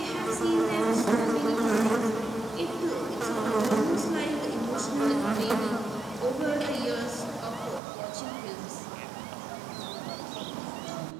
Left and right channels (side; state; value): left; drops out; at 7.8 s